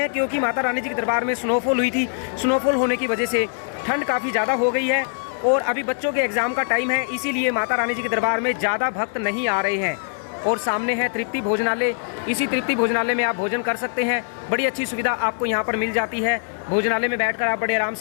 क्योंकि माता रानी जी के दरबार में स्नोफॉल हुई थी। स्नोफॉल होने की वजह से ठंड काफ़ी ज़्यादा हो गई है और अभी बच्चों के एग्ज़ाम का टाइम है, इसीलिए माता रानी जी के दरबार में ज़्यादा भक्त नहीं आ रहे हैं। और सामने है तृप्ति भोजनालय। इसी तृप्ति भोजनालय में आप भोजन कर सकते हैं। बड़ी अच्छी सुविधा आपको यहाँ पर मिल जाती है। भोजनालय में बैठकर आप बड़े आराम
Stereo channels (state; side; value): silent; right; digital silence